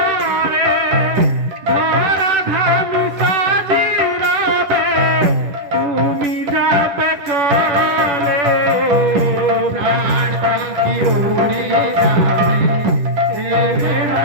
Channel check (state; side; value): late; left; 10 ms